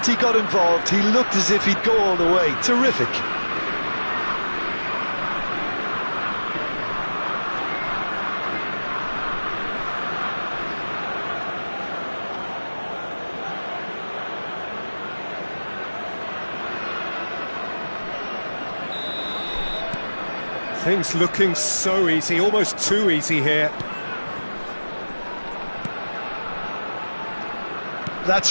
he got involved, he looked as if he'd go all the way. Terrific. Things looking so easy, almost too easy here.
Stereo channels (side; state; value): both; inverted; correlation -1.00